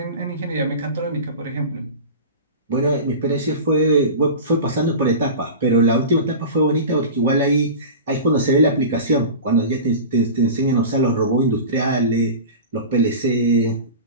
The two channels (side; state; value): both; inverted; correlation -0.32